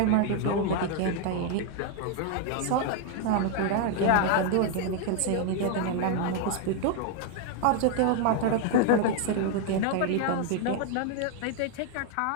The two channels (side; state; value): both; different; correlation 0.00